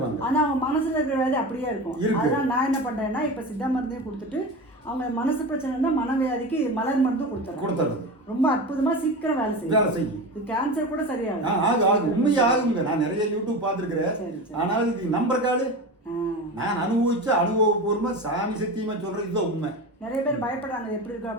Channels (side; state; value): both; normal; correlation 0.27